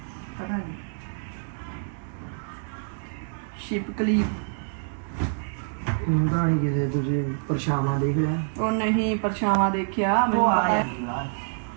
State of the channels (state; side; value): silent; left; 60 dB below the other